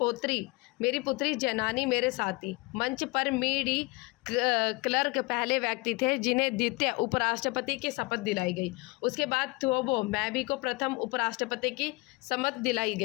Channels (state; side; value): quieter; right; 24.6 dB